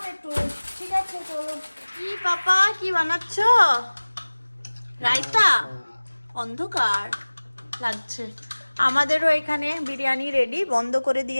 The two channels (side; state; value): both; inverted; correlation -1.00